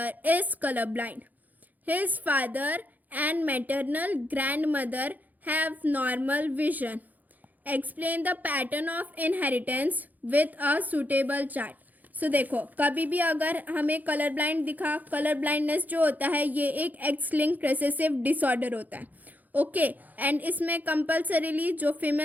is colorblind. His father and maternal grandmother have normal vision. Explain the pattern of inheritance with a suitable chart. सो देखो कभी भी अगर हमें colour blind दिखा, colour blindness जो होता है ये एक एक्स लिंक्ड रिसेसिव डिसऑर्डर होता है. ओके, एंड इसमें कंपल्सरीली जो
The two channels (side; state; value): left; late; 0.082 ms